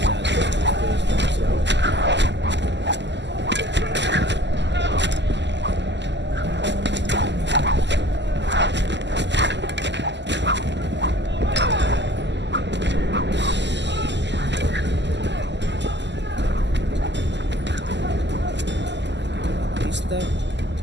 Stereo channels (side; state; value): left; late; 0.51 ms